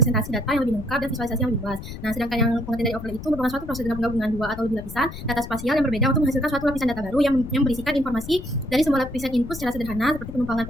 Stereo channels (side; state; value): left; noise; rumble, 10 dB below the sound